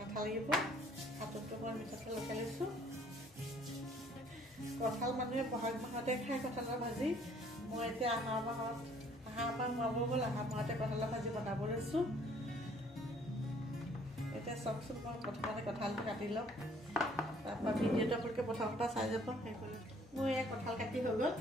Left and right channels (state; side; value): normal; both; correlation 0.60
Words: আঠা লাগিব, হাততো মই মিঠাতেল লগাই লৈছোঁ। কঁঠাল মানুহে বহাগ মাহতে খায় কঁঠালৰ ভাজি। মই এতিয়া আহাৰ মাহ সোমাব হ'ল, আহাৰ মাহতে কঁঠালৰ ভাজি বনাব লৈছোঁ। এতিয়া চাওকচোন, মই প্ৰথমতে কঁঠালটো কাটি ল'ম, তাৰপৰা ভিডিঅ'টো আপোনালোকে প্ৰথমৰ পৰা চাই যাব। মোৰ এয়া কঁঠাল কাটি হৈ গ'ল,